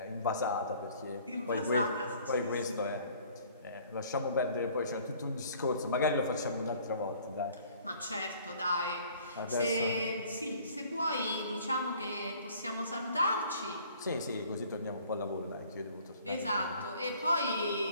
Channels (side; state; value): both; inverted; correlation -0.55